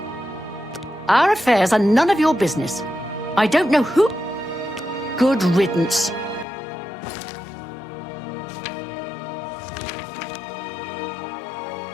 Our affairs are none of your business. I don't know who... Good riddance.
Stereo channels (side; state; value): right; drops out; at 6.5 s